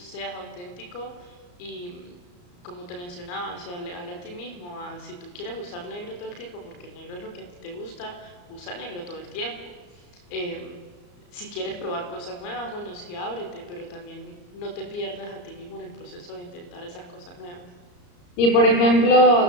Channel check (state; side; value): late; right; 34 ms